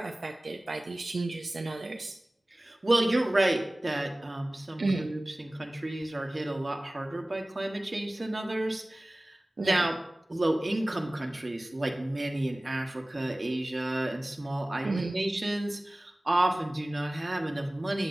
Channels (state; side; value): normal; both; correlation 0.98